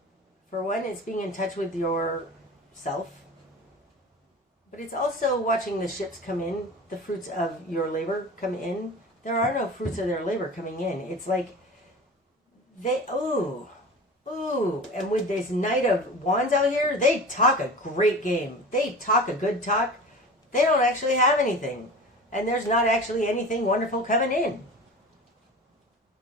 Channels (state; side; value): normal; both; correlation 0.35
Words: for one, it's being in touch with yourself. But it's also watching the ships come in, the fruits of your labor come in. There are no fruits of their labor coming in. It's like and with this Knight of Wands out here, they talk a great game. They talk a good talk. They don't actually have anything. And there's not actually anything wonderful coming in.